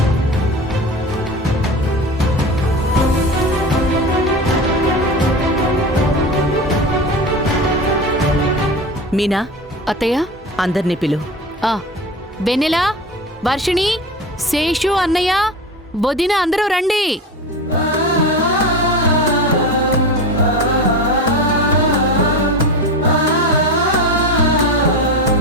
మీనా, అత్తయ్య అందర్నీ పిలు. ఆ వెన్నెల, వర్షిణి, శేషు, అన్నయ్య, వదిన అందరూ రండి.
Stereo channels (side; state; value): both; normal; correlation 0.28